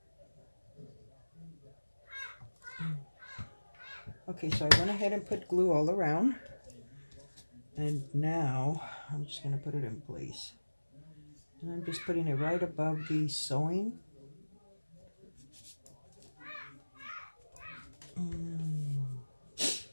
Okay, so I went ahead and put glue all around. And now, I'm just going to put it in place. And I'm just putting it right above the sewing. And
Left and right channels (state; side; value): inverted; both; correlation -1.00